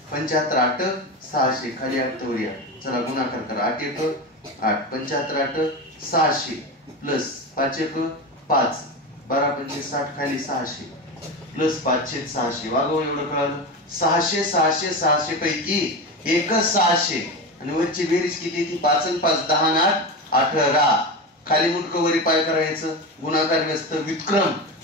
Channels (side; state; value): both; normal; correlation 0.21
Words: 75 8 600 खाली 8 तर वरी 8. चला गुणाकार करा 8 1 8 75 8 600 प्लस 5 1 5 12 पंचे 60 खाली 600 प्लस 5/600. वागव एवढं कळालं. 600 600 600 पैकी एक 600 आणि वरची बेरीज किती ती 5 आणि 5 10 आणि 8 18. खाली मुटकं वरी पाय करायचं. गुणाकार व्यस्त व्युत्क्रम